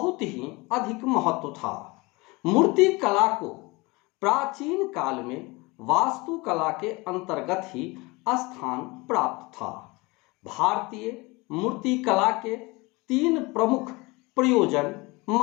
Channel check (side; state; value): right; quieter; 24.4 dB